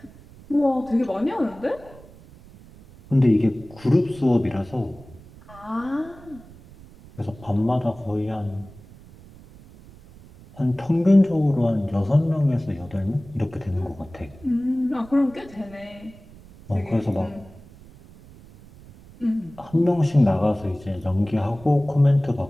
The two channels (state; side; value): noise; right; rumble, 21 dB below the sound